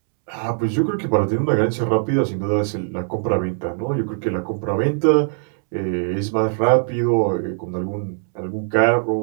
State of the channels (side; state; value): left; silent; 65 dB below the other